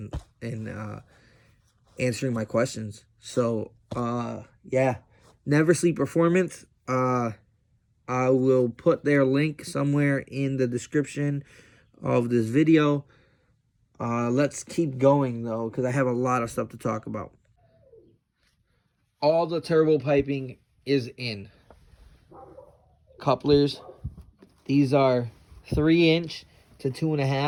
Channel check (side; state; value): both; identical; correlation 1.00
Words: and answering my questions. So yeah, Never Sleep Performance. I will put their link somewhere in the description of this video. Let's keep going, though, because I have a lot of stuff to talk about. All the turbo piping is in. Couplers. These are 3" to